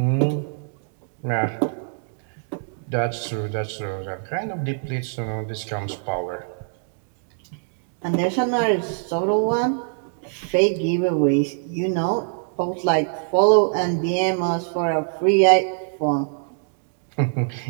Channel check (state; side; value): silent; left; digital silence